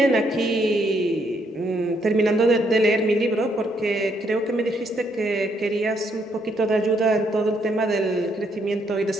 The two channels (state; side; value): normal; both; correlation 0.73